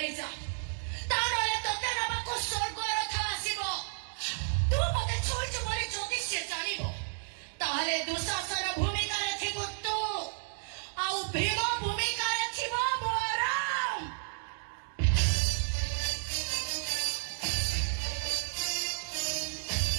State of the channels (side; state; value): left; silent; digital silence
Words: ଯା ତା ନହେଲେ ତତେ ନେବାକୁ ସ୍ୱର୍ଗ ରଥ ଆସିବ ତୁ ମତେ ଛୁଇଁଛୁ ବୋଲି ଯଦି ସେ ଜାଣିବ ତାହେଲେ ଦୁଃଶାସନ ଭୂମିକାରେ ଥିବ ତୁ ଆଉ ଭୀମ ଭୂମିକାରେ ଥିବ ବଳରାମ